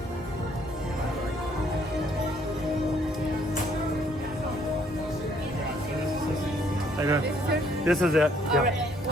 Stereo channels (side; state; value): both; normal; correlation 0.65